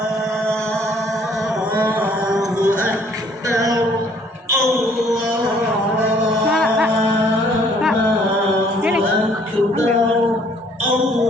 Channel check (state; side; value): normal; both; correlation 0.61